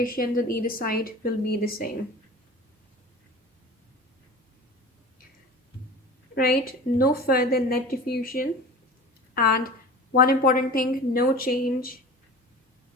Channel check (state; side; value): normal; both; correlation 0.37